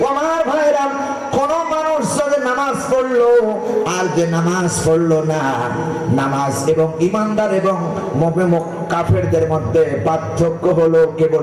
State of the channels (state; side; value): identical; both; correlation 1.00